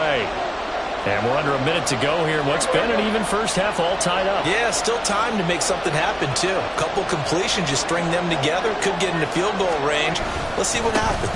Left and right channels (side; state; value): both; identical; correlation 1.00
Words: And we're under a minute to go here. What's been an even 1st half all tied up. Yeah, still time to make something happen, too. A couple completions, just string them together. Could get into field goal range. Let's see what